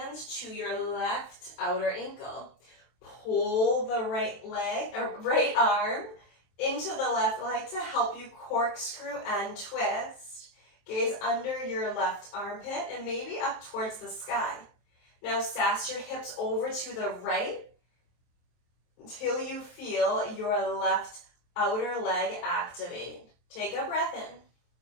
to your left outer ankle. Pull the right leg or right arm into the left leg to help you corkscrew and twist. Gaze under your left armpit and maybe up towards the sky. Now sass your hips over to the right until you feel your left outer leg activate. Take a breath in.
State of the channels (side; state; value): right; late; 23 ms